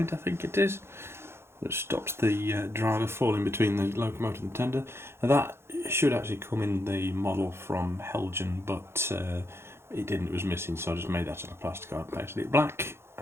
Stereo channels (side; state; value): left; late; 0.12 ms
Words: I think it is, that stops the driver falling between the locomotive and the tender. Now that should actually come in the model from Heljan, but it didn't, it was missing, so I just made that out of plasticard, painted it black,